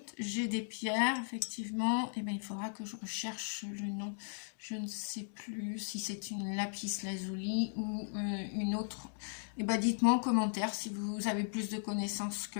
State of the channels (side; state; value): right; silent; digital silence